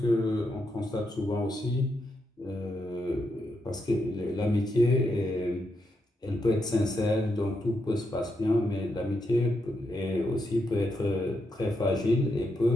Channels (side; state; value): both; normal; correlation 0.82